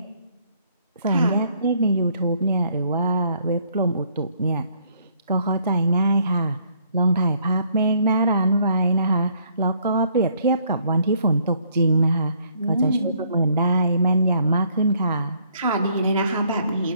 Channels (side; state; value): both; inverted; correlation -0.66